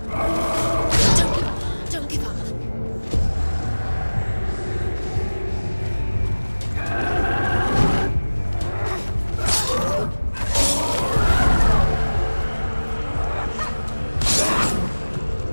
Don't give up.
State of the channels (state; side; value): inverted; both; correlation -1.00